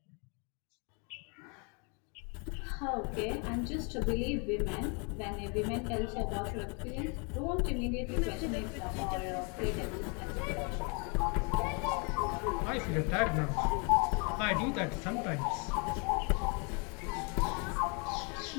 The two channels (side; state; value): right; quieter; 34.3 dB